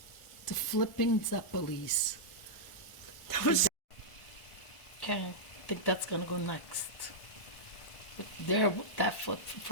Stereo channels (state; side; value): late; right; 1.4 ms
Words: The flipping Zeppoles. Okay, I think that's gonna go next. There, that flip